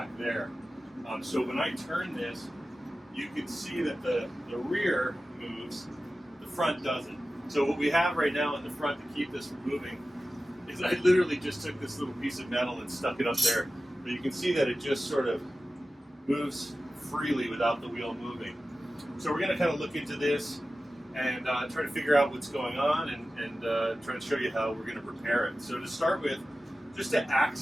there. So when I turn this, you can see that the rear moves, the front doesn't. So what we have right now in the front to keep this from moving is I literally just took this little piece of metal and stuck it up there. But you can see that it just sort of moves freely without the wheel moving. So we're going to kind of look into this and try to figure out what's going on and try to show you how we're going to repair it. So to start with, just to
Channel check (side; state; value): both; normal; correlation 0.95